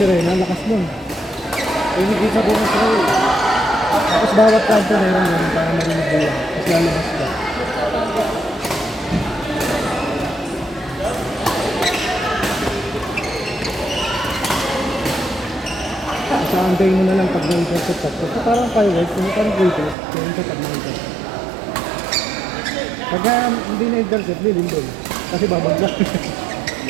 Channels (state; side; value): drops out; left; at 20.0 s